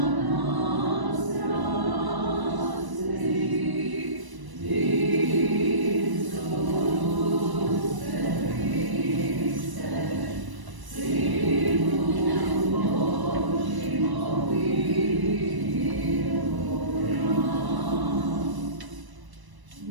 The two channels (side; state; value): left; late; 1.0 ms